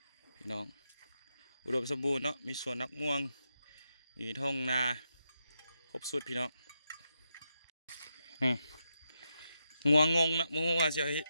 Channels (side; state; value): both; inverted; correlation -0.85